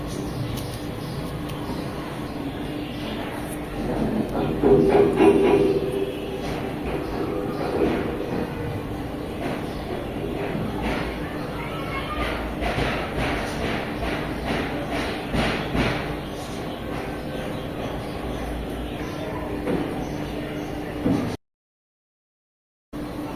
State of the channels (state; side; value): identical; both; correlation 1.00